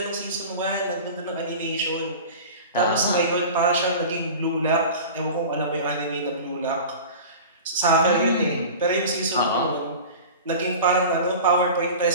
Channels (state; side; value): inverted; both; correlation -0.35